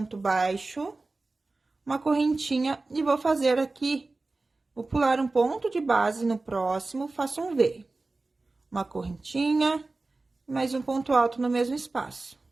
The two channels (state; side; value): quieter; left; 3.4 dB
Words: baixo, uma correntinha, e vou fazer aqui, vou pular um ponto de base no próximo, faço um V. Uma correntinha, e mais um ponto alto no mesmo espaço.